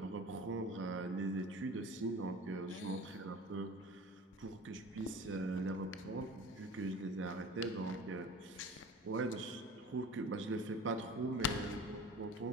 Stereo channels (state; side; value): normal; both; correlation 0.40